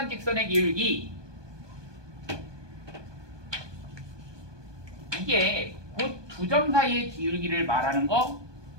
직선의 기울기. 이게 곧 두 점 사이의 기울기를 말하는 거,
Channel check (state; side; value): late; left; 1.2 ms